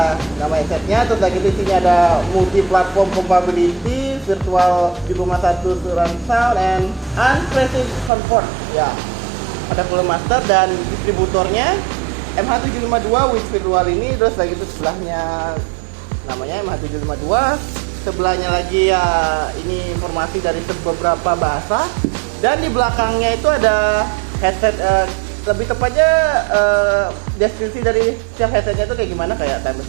nama headsetnya, terus lagi di sini ada multi platform compatibility, virtual 7,1 surround sound and unpressive comfort ya. Ada Cooler Master dan distributornya MH752 with virtual ini, terus lagi itu sebelahnya namanya MH752, sebelahnya lagi ya ini informasi dari beberapa bahasa, dan di belakangnya itu ada headset lebih tepatnya deskripsi dari setiap headsetnya itu kayak gimana, kayak time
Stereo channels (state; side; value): drops out; left; at 8.1 s